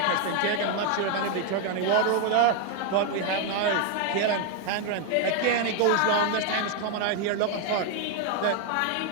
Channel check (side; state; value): both; different; correlation 0.01